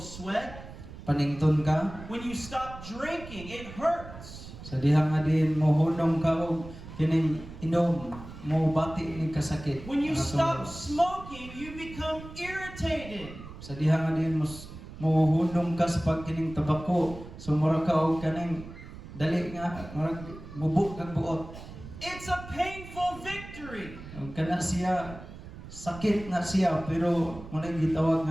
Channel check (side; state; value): right; noise; rumble, 14 dB below the sound